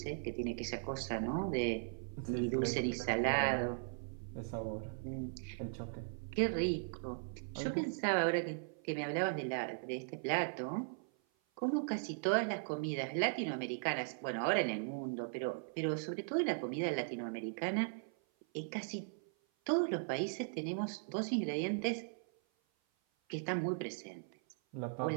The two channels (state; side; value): silent; left; 52 dB below the other